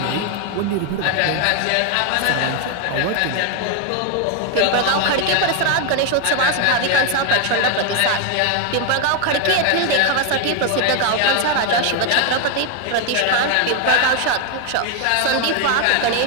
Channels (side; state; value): both; different; correlation 0.01